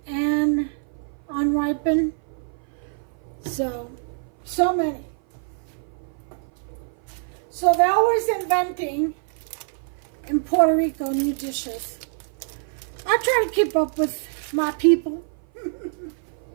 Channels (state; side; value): silent; left; 56 dB below the other